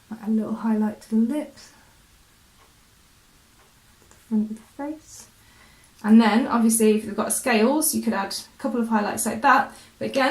Add a little highlight to the lips, the front of the face. And then obviously if you've got scales, you could add a couple of highlights like that. But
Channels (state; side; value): identical; both; correlation 1.00